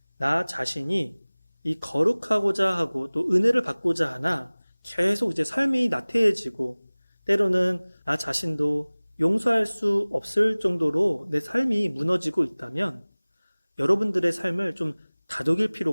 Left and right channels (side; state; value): both; inverted; correlation -1.00